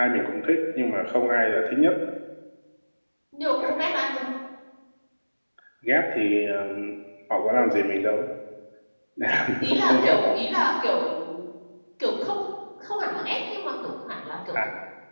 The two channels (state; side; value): inverted; both; correlation -1.00